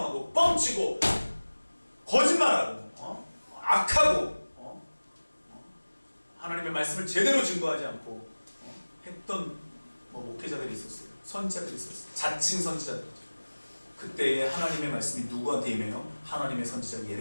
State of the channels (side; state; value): both; inverted; correlation -1.00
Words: 뻥치고 거짓말하고 악하고 하나님의 말씀을 제대로 증거하지 않고 했던 목회자들이 있었어요. 선지자들이 있었어요. 자칭 선지자들. 그때의 하나님의 말씀이 누구한테 임해요? 하나님의 선지자